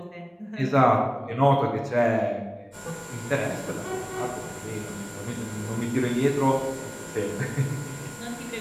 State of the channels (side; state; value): both; identical; correlation 1.00